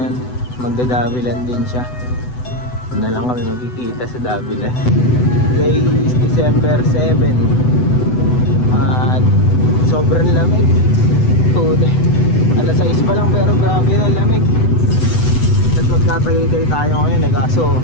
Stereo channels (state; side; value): late; right; 8.0 ms